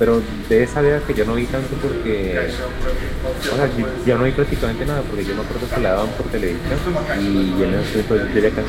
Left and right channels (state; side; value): identical; both; correlation 1.00